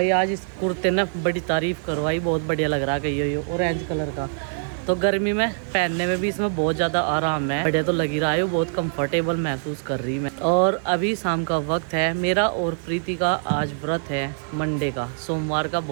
आज इस कुर्ते ने बड़ी तारीफ करवाई, बहुत बढ़िया लग रहा है ये ऑरेंज कलर का। तो गर्मी में पहनने में भी इसमें बहुत ज़्यादा आराम है, बढ़िया तो लग ही रहा है, बहुत कंफर्टेबल महसूस कर रही मैं। और अभी शाम का वक्त है, मेरा और प्रीति का आज व्रत है मंडे का, सोमवार का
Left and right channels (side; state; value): left; silent; digital silence